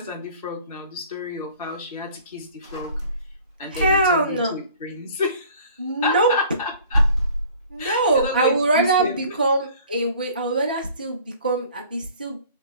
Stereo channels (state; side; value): inverted; both; correlation -0.50